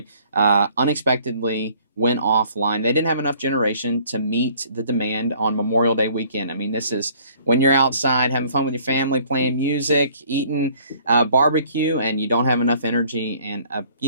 unexpectedly went offline. They didn't have enough generation to meet the demand on Memorial Day weekend. I mean, this is when you're outside having fun with your family, playing music, eating barbecue, and you don't have enough energy. And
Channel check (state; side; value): inverted; both; correlation -0.58